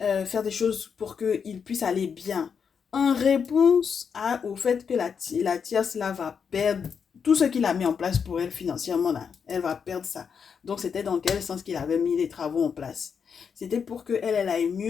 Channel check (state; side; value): quieter; right; 6.6 dB